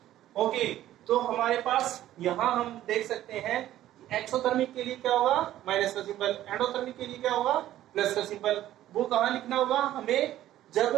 ओके, तो हमारे पास यहाँ हम देख सकते हैं एक्सोथर्मिक के लिए क्या होगा, माइनस का सिंबल, एंडोथर्मिक के लिए क्या होगा, प्लस का सिंबल। वो कहाँ लिखना होगा, हमें जब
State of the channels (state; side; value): quieter; left; 13.4 dB